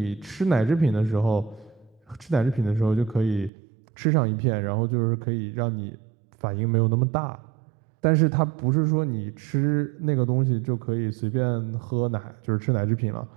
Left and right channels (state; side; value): drops out; left; at 3.5 s